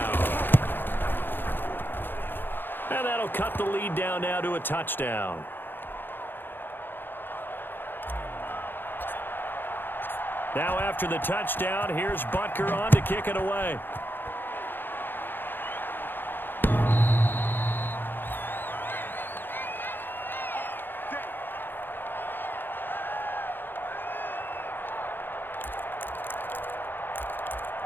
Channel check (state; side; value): late; right; 0.097 ms